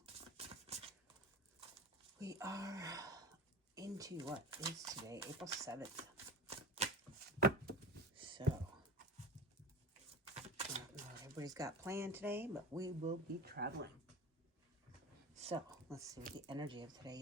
We are into what is today, April 7th. So, I don't know what everybody's got planned today, but we will be traveling. So, let's see what the energy of today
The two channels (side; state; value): both; normal; correlation 0.32